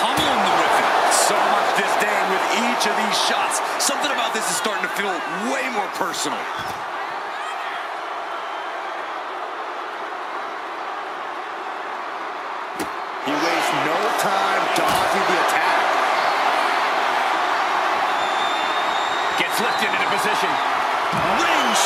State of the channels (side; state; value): both; identical; correlation 1.00